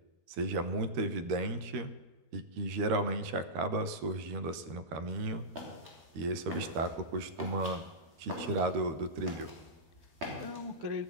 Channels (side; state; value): left; late; 13 ms